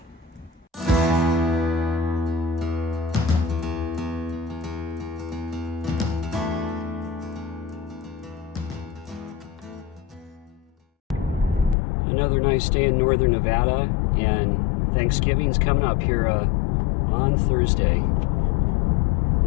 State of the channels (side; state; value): right; drops out; at 11.8 s